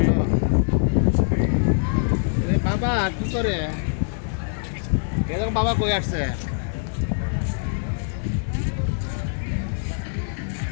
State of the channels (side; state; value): right; silent; 63 dB below the other